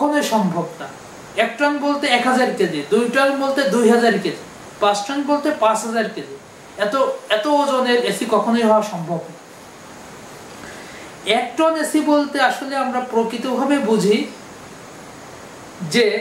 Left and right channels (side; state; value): both; identical; correlation 1.00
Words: সম্ভব না। 1 টন বলতে 1000 কেজি, 2 টন বলতে 2000 কেজি, 5 টন বলতে 5000 কেজি। এত ওজনের এসি কখনোই হওয়া সম্ভব না। 1 টন এসি বলতে আসলে আমরা প্রকৃতভাবে বুঝি যে